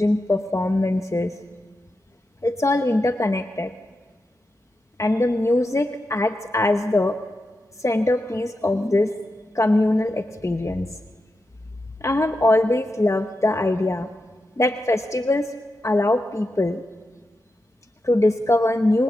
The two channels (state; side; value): normal; both; correlation 0.89